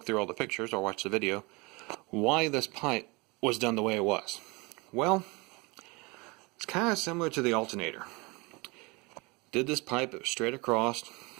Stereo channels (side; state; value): left; quieter; 26.4 dB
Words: through all the pictures or watched the video, why this pipe was done the way it was. Well, it's kind of similar to the alternator. Did this pipe, it was straight across,